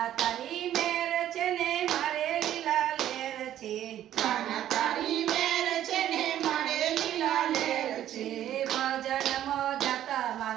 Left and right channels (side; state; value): left; quieter; 11.8 dB